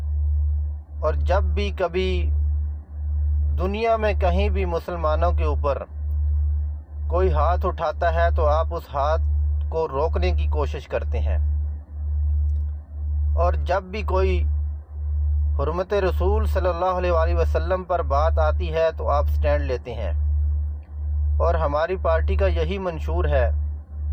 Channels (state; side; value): identical; both; correlation 1.00